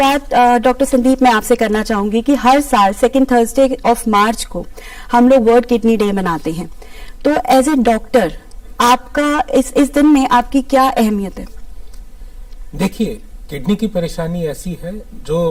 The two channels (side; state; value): both; identical; correlation 1.00